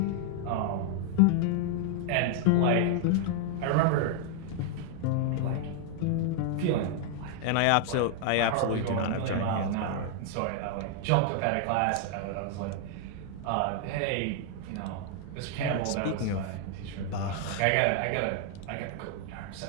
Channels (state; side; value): different; both; correlation 0.00